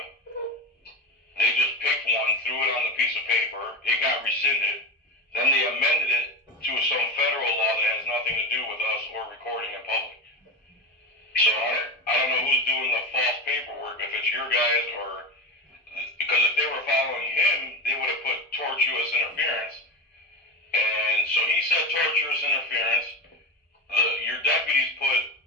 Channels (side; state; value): both; normal; correlation 0.20